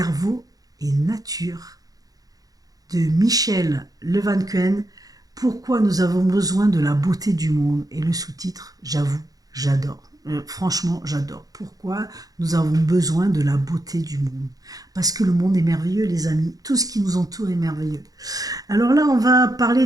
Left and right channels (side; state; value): left; late; 0.18 ms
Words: et nature de Michel Levancuen. Pourquoi nous avons besoin de la beauté du monde. Et le sous-titre, j'avoue, j'adore. Franchement, j'adore. Pourquoi nous avons besoin de la beauté du monde. Parce que le monde est merveilleux, les amis. Tout ce qui nous entoure est merveilleux. Alors là, on va parler